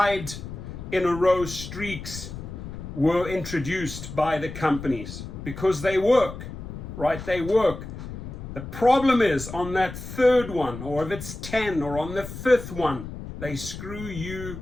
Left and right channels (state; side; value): noise; left; rumble, 10 dB below the sound